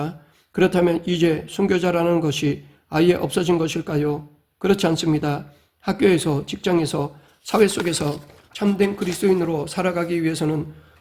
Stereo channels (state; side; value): identical; both; correlation 1.00